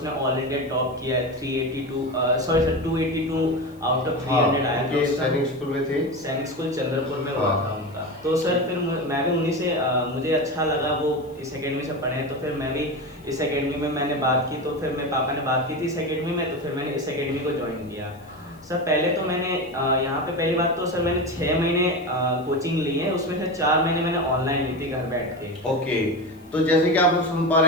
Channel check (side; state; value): left; noise; hiss, 30 dB below the sound